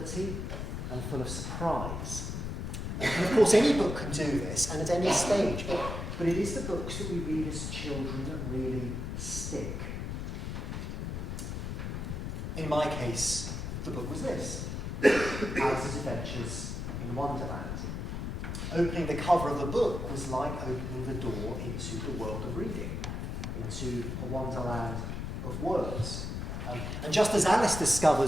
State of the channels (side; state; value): left; noise; rumble, 4 dB below the sound